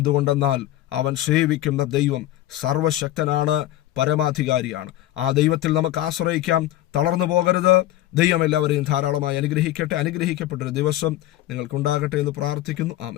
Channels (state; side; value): quieter; right; 14.6 dB